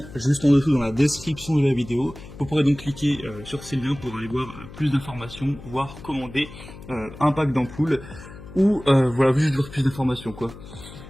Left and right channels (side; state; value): left; noise; hum, 16 dB below the sound